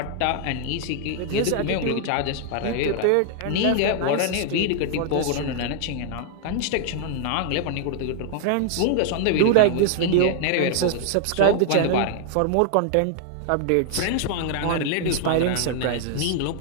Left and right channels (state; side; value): different; both; correlation 0.00